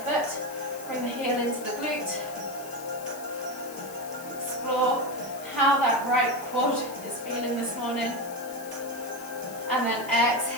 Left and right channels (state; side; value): noise; left; hiss, 15 dB below the sound